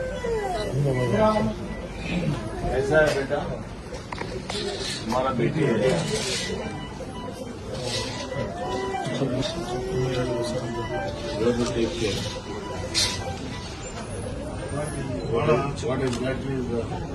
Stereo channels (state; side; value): identical; both; correlation 1.00